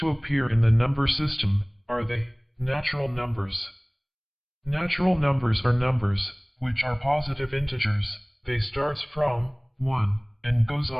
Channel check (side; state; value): both; identical; correlation 1.00